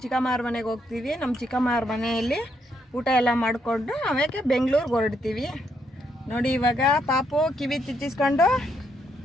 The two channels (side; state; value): both; normal; correlation 0.76